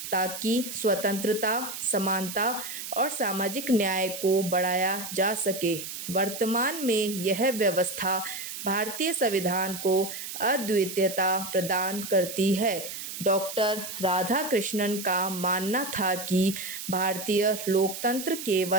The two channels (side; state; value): right; noise; hiss, 8 dB below the sound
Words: ताकि स्वतंत्रता, समानता और सामाजिक न्याय को बढ़ाया जा सके। वर्तमान में यह व्यवस्था भारतीय संविधान को अद्वितीयता प्रदान करती है। डॉक्टर राधाकृष्णन का मानना था कि भारतीय लोकतंत्र